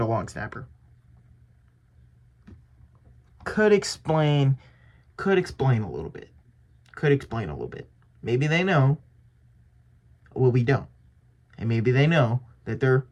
a long snapper. Could explain a little bit. Maybe they know. Well, we don't. And maybe they know that they're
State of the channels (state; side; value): identical; both; correlation 1.00